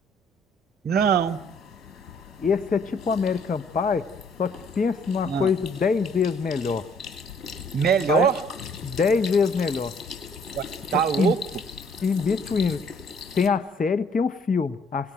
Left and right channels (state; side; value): normal; both; correlation 0.62